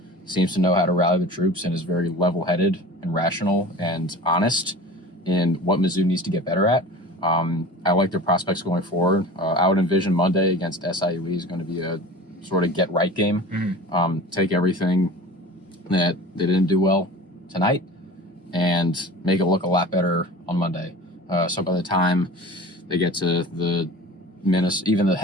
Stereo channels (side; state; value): both; normal; correlation 0.38